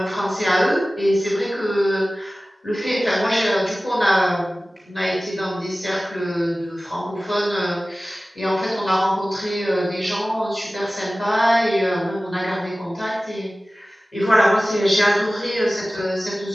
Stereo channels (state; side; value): normal; both; correlation 0.97